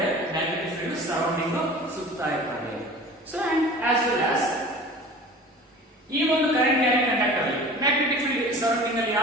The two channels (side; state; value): both; normal; correlation 0.41